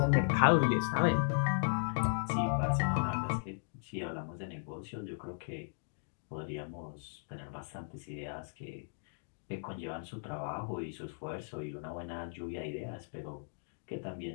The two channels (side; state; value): right; silent; digital silence